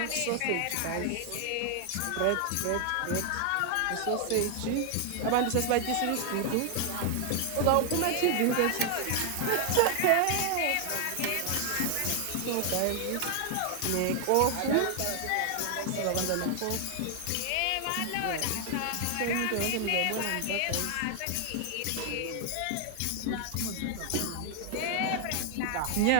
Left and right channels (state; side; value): different; both; correlation 0.00